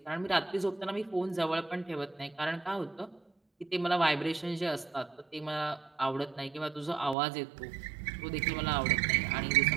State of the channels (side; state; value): left; drops out; at 7.2 s